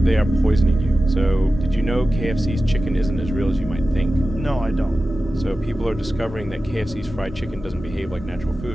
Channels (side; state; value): both; normal; correlation 0.94